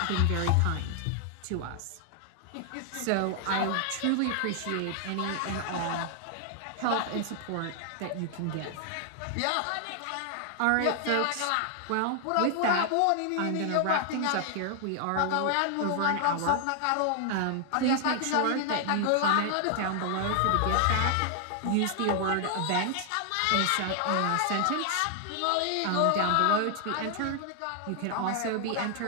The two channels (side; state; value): both; different; correlation 0.00